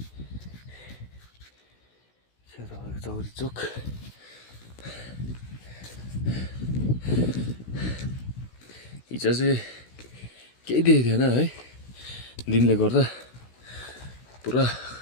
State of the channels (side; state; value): right; late; 16 ms